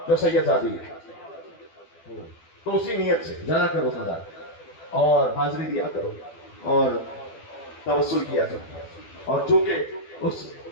جو سید زادی ہے، تو اسی نیت سے جانا کرو مزار اور حاضری دیا کرو اور توسل کیا کرو۔ اور چونکہ اس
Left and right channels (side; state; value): right; late; 12 ms